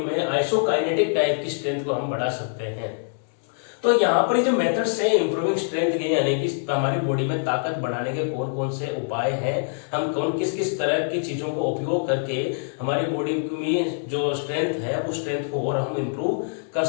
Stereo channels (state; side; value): silent; right; digital silence